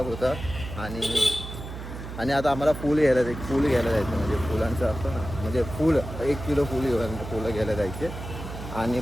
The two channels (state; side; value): noise; right; hum, 9 dB below the sound